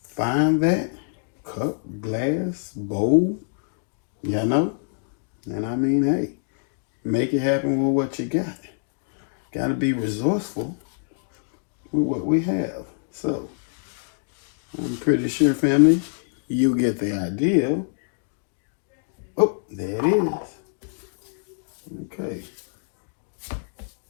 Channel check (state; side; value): silent; right; digital silence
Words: find that cup, glass, bowl, you know, and I mean, hey, make it happen with what you got. Gotta be resourceful with what we have. So, I'm pretty sure, family, you get the idea. Oh, there it is. Okay.